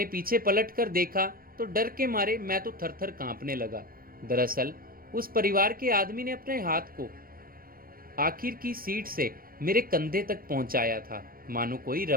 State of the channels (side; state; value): left; late; 0.42 ms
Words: पीछे पलट कर देखा तो डर के मारे मैं तो थर-थर कांपने लगा। दरअसल उस परिवार के आदमी ने अपने हाथ को आखिर की सीट से मेरे कंधे तक पहुंचाया था, मानो कोई